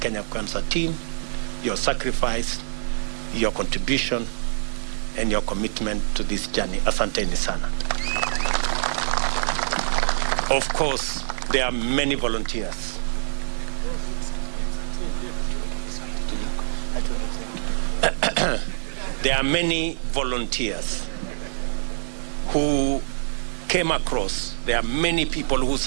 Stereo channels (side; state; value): left; silent; 62 dB below the other